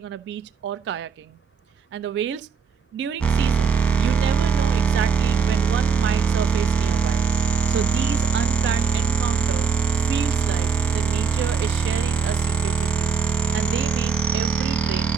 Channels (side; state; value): left; quieter; 5.8 dB